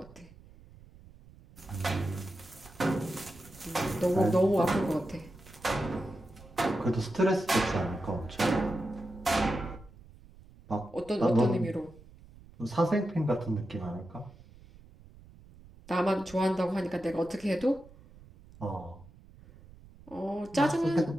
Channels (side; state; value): right; noise; rumble, 22 dB below the sound